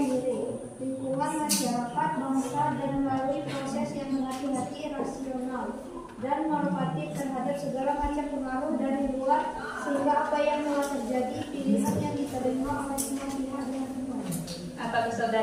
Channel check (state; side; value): identical; both; correlation 1.00